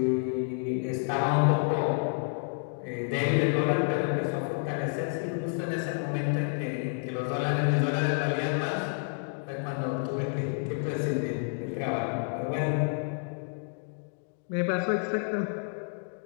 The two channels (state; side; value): silent; right; 58 dB below the other